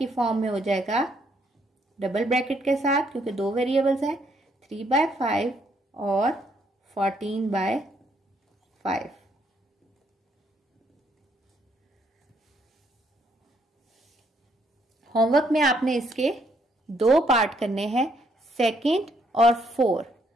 फॉर्म में हो जाएगा डबल ब्रैकेट के साथ, क्योंकि दो वेरिएबल्स हैं, 3/5 और 14/5। होमवर्क में आपने इसके 2 पार्ट करने हैं, सेकंड और 4।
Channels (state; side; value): normal; both; correlation 0.71